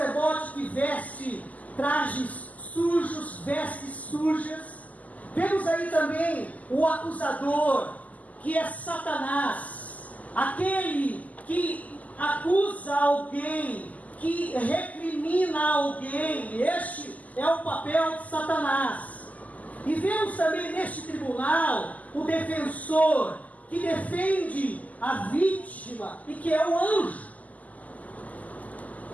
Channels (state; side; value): late; right; 0.076 ms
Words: que veste trajes sujos, vestes sujas. Vemos aí também o acusador, que é Satanás, aquele que acusa alguém, que recrimina alguém. Este é o papel de Satanás. E vemos também neste tribunal o defensor, que defende a vítima e que é o anjo.